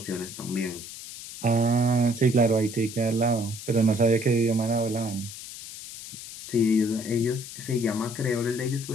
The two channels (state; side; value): noise; left; hiss, 12 dB below the sound